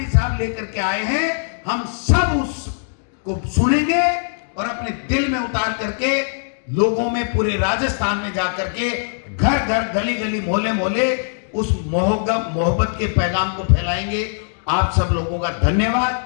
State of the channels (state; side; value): silent; right; digital silence